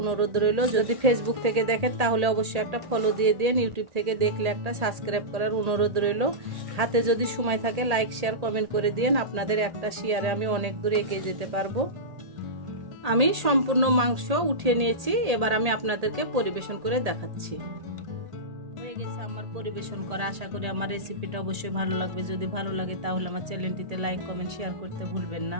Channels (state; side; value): late; left; 1.8 ms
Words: অনুরোধ রইল। যদি ফেসবুক থেকে দেখেন তাহলে অবশ্যই একটা ফলো দিয়ে দিন। ইউটিউব থেকে দেখলে একটা সাবস্ক্রাইব করার অনুরোধ রইল। হাতে যদি সময় থাকে লাইক শেয়ার কমেন্ট করে দিন। আপনাদের একটা শেয়ারে আমি অনেক দূরে এগিয়ে যেতে পারবো। আমি সম্পূর্ণ মাংস উঠিয়ে নিয়েছি। এবার আমি আপনাদেরকে পরিবেশন করে দেখাচ্ছি। হয়ে গেছে আমার পরিবেশন করা। আশা করি আমার রেসিপিটা অবশ্যই ভালো লাগবে। যদি ভালো লাগে তাহলে আমার চ্যানেলটিতে লাইক কমেন্ট শেয়ার করতে ভুলবেন